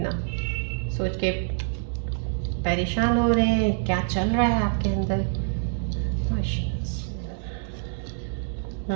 सोच के परेशान हो रहे हैं, क्या चल रहा है आपके अंदर।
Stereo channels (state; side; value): silent; left; digital silence